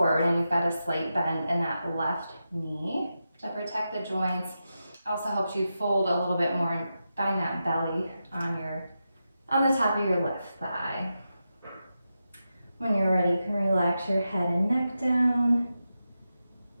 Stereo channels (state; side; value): inverted; both; correlation -0.89